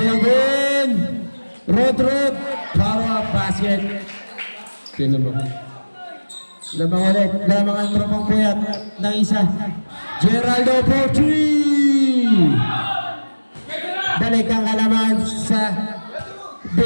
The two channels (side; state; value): both; inverted; correlation -1.00